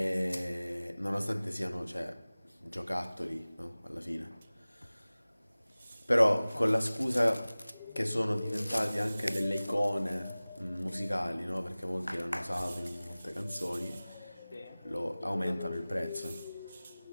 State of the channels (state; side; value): inverted; both; correlation -0.99